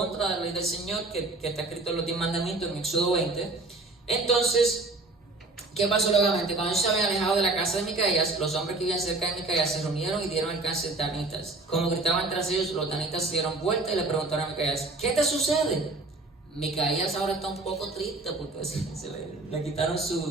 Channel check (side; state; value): left; quieter; 3.2 dB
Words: de la ley del Señor, que está escrito en los 10 mandamientos en Éxodo 20. Entonces, ¿qué pasó luego? Cuando ellos se habían alejado de la casa de Micaías, los hombres que vivían cerca de Micaías se reunieron y dieron alcance a danitas. Como gritaban tras ellos, los danitas se dieron vuelta y le preguntaron a Micaías, ¿qué te sucede? Micaías ahora está un poco triste porque le quitaron